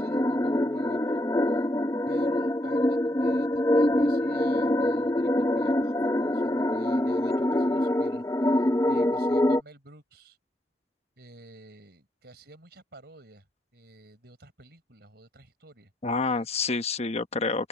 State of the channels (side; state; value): both; normal; correlation 0.78